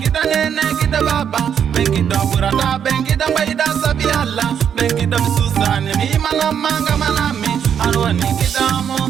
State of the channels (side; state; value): left; quieter; 8.3 dB